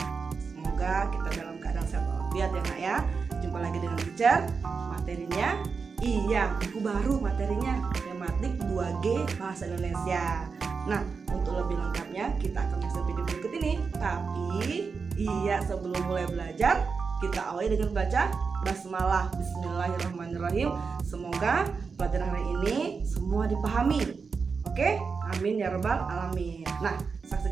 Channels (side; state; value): left; quieter; 5.1 dB